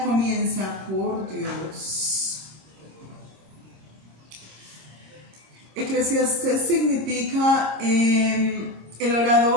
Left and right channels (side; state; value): left; late; 26 ms